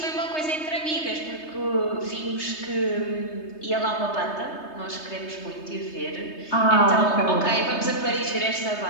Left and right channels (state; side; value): late; right; 3.3 ms